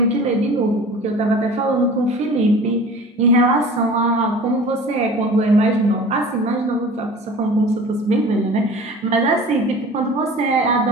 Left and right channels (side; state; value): both; normal; correlation 0.41